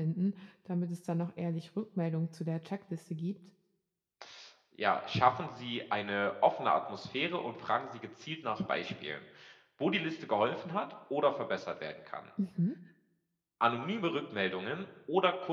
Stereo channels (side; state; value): both; identical; correlation 1.00